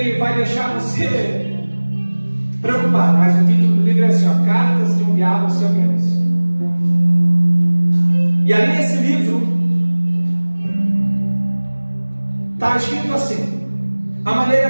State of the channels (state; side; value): inverted; both; correlation -1.00